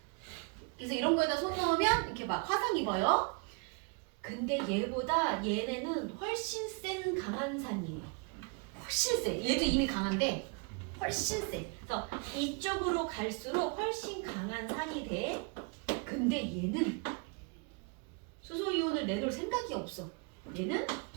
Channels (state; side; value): quieter; left; 34.2 dB